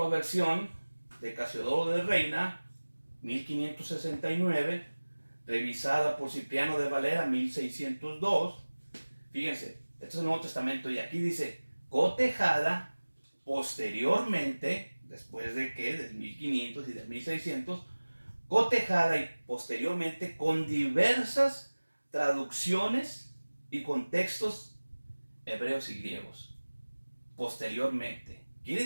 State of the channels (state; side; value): inverted; both; correlation -1.00